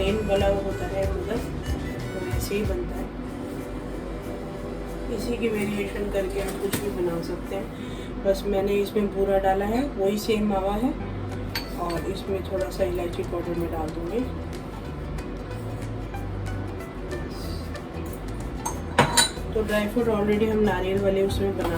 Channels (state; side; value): identical; both; correlation 1.00